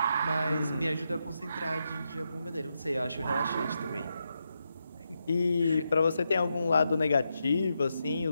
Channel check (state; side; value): inverted; both; correlation -0.85